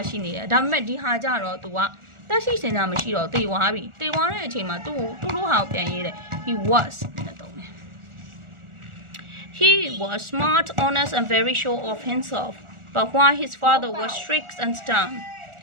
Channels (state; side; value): late; left; 1.4 ms